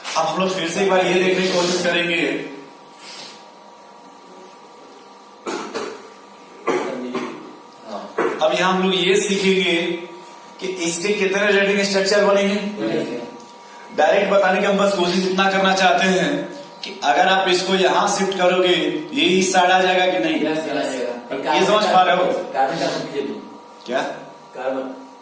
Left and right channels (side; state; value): both; identical; correlation 1.00